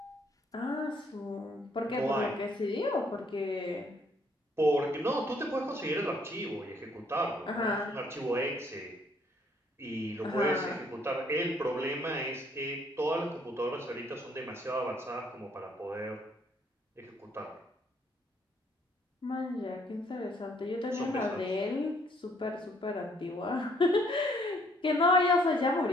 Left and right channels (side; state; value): both; normal; correlation 0.65